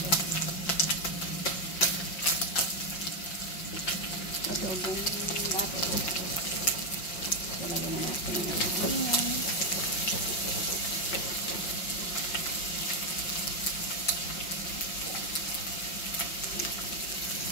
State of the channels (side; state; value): right; late; 5.6 ms